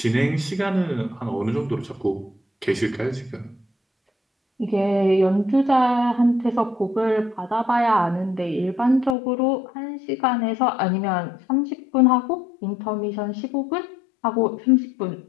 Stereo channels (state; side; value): drops out; right; at 9.2 s